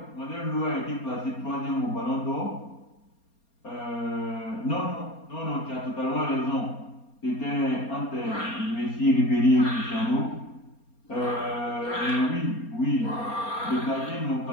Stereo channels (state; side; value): late; right; 4.3 ms